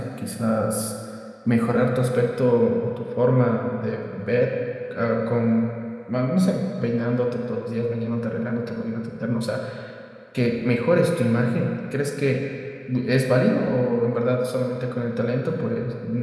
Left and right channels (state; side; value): identical; both; correlation 1.00